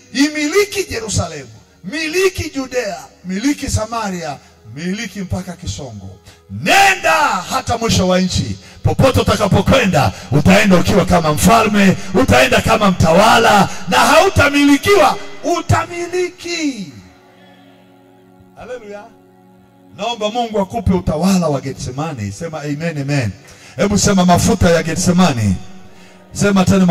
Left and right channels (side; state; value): both; identical; correlation 1.00